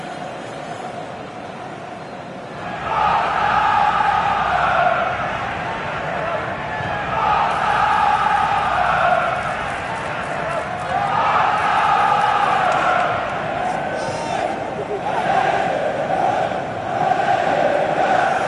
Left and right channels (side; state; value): both; identical; correlation 1.00